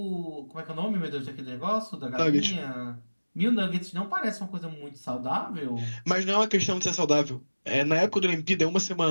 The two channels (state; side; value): inverted; both; correlation -1.00